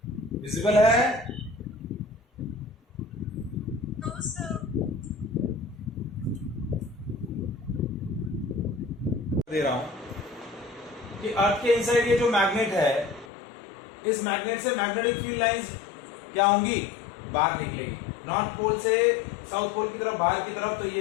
विजिबल है? दे रहा हूं कि अर्थ के इनसाइड ये जो मैग्नेट है, इस मैग्नेट से मैग्नेटिक फील्ड लाइंस क्या होंगी, बाहर निकलेगी नॉर्थ पोल से साउथ पोल की तरफ, बाहर की तरफ। तो ये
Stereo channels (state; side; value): drops out; right; at 13.3 s